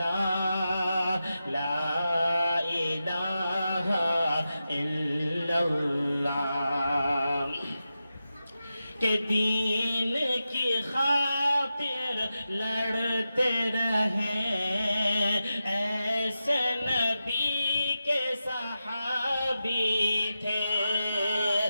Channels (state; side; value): inverted; both; correlation -0.91